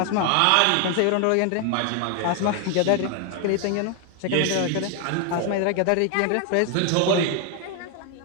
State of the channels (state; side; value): different; both; correlation 0.00